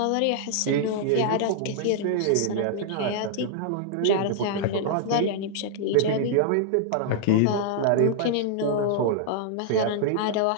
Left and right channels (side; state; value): both; different; correlation -0.01